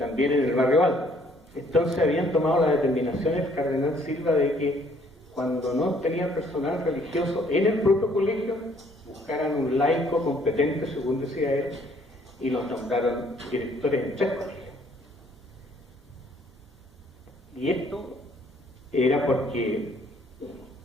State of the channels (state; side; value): normal; both; correlation 0.63